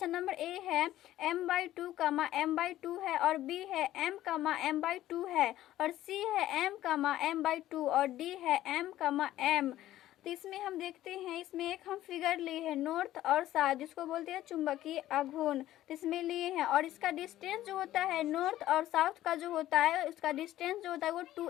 नंबर ए है M/2 M/2 है, और बी है M/M/2 है, और सी है M/M/2, और डी है M/M। तो इसमें हम देखते हैं, इसमें एक हम फिगर लिए हैं नॉर्थ और साउथ, जिसको बोलते हैं चुंबकीय आघूर्ण। तो इसमें लिए हैं, और इसका डिस्टेंस जो होता है नॉर्थ और साउथ का जो होता है उसका डिस्टेंस जो होता है वो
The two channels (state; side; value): quieter; right; 14.0 dB